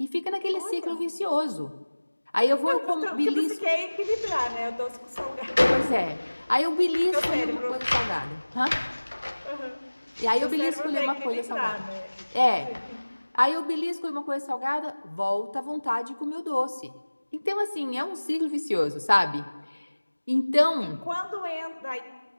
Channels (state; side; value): inverted; both; correlation -1.00